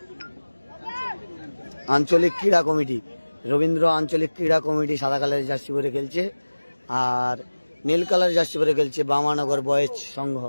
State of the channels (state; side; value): inverted; both; correlation -1.00